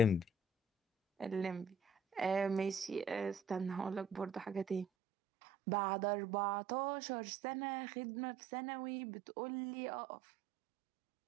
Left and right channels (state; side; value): drops out; left; at 4.9 s